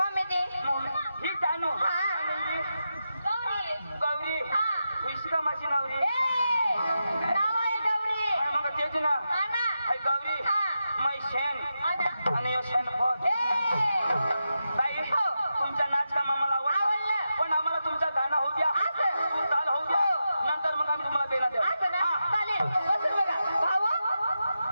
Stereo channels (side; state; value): both; inverted; correlation -0.89